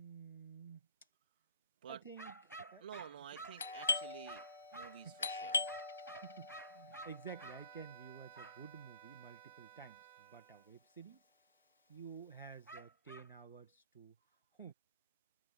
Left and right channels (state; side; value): inverted; both; correlation -0.58